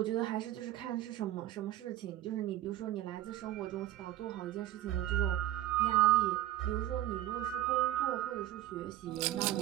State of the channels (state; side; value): quieter; left; 14.0 dB